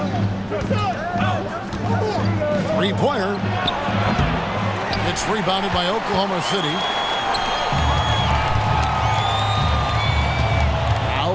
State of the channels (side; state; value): both; identical; correlation 1.00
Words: Three-pointer. It's rebounded by Oklahoma City.